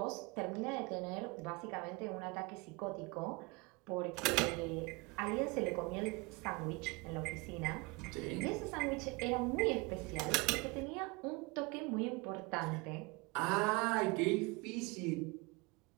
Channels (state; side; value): quieter; left; 26.6 dB